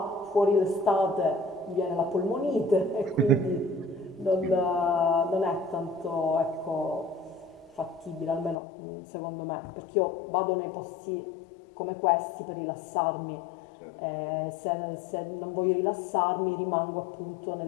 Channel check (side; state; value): right; drops out; at 8.6 s